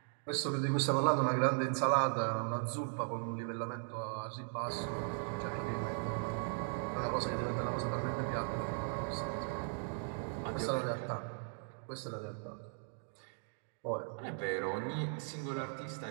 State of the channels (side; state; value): left; silent; 52 dB below the other